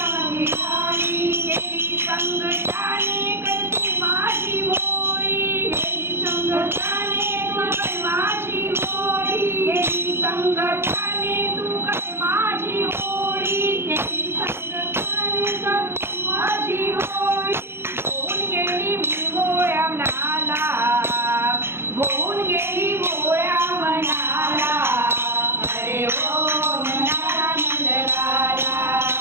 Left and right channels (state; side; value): late; left; 0.12 ms